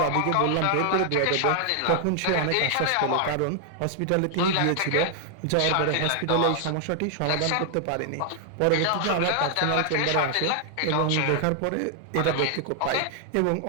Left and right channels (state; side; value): different; both; correlation 0.00